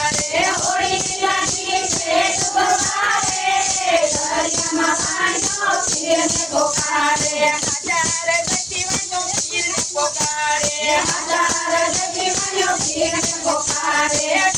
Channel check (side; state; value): both; normal; correlation 0.96